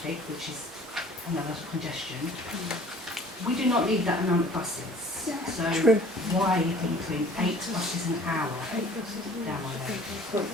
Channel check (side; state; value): both; normal; correlation 0.51